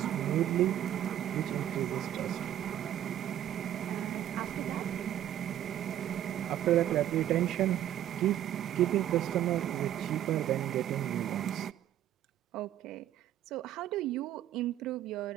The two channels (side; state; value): left; quieter; 11.6 dB